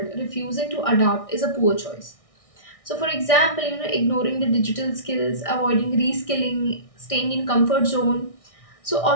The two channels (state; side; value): late; right; 1.6 ms